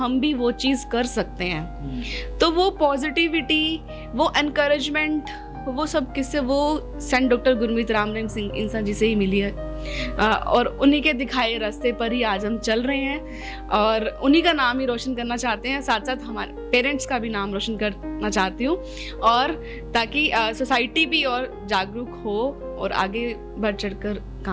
भी वो चीज़ कर सकते हैं। तो वो पॉजिटिविटी, वो एनकरेजमेंट, वो सब किससे, वो सेंट डॉक्टर गुरमीत राम रहीम सिंह इंसान जी से ही मिली है, और उन्हीं के दिखाए रास्ते पर ही आज हम चल रहे हैं, और उन्हीं का नाम ही रोशन करना चाहते हैं। साथ साथ हमारे पेरेंट्स का भी नाम रोशन करना चाहती हूँ, और ताकि सोसाइटी भी और जागरूक हो और आगे बढ़ चढ़कर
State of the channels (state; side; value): identical; both; correlation 1.00